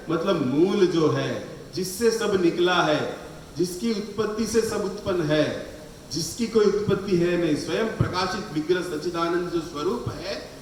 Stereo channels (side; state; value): both; identical; correlation 1.00